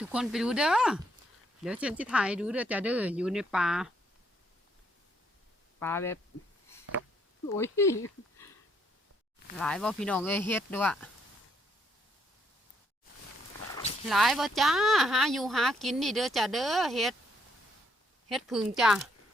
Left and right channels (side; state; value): both; normal; correlation 0.71